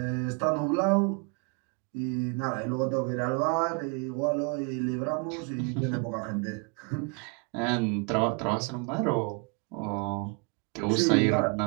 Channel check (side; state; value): left; quieter; 34.8 dB